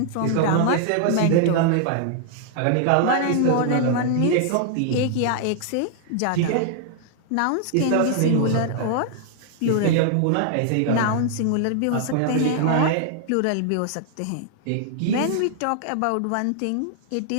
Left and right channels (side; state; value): both; different; correlation 0.00